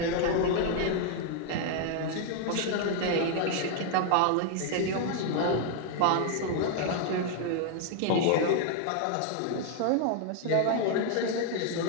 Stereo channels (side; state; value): both; different; correlation 0.00